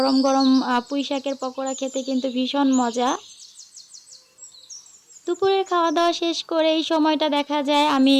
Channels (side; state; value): both; identical; correlation 1.00